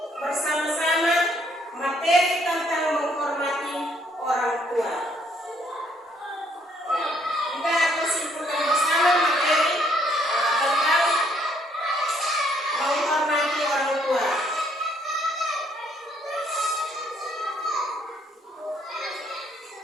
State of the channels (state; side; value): normal; both; correlation 0.67